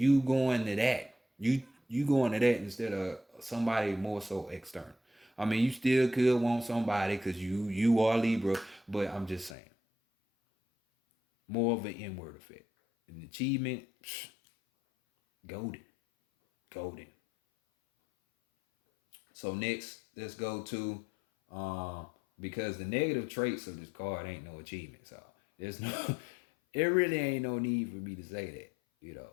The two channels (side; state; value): right; drops out; at 9.6 s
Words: going to that. You going to that instead of somebody more so external. I mean, you still could want somebody because you are Libra, but I'm just saying. More of an inward effect. An achievement, golden. Golden. So next, let's go to because the negative traits of this card ain't no achievement. So there's no it really ain't no need for me to say that, you know.